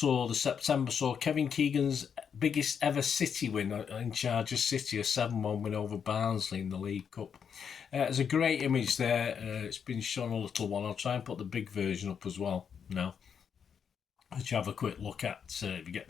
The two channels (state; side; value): quieter; right; 7.2 dB